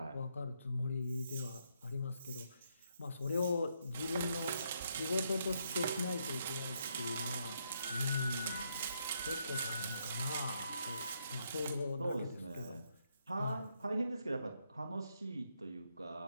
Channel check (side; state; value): both; inverted; correlation -0.76